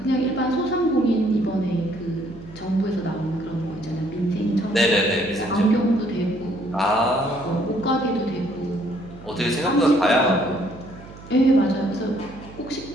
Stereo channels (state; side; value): noise; right; hum, 17 dB below the sound